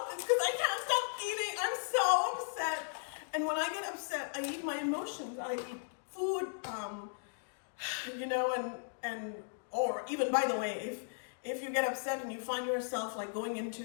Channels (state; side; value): silent; right; digital silence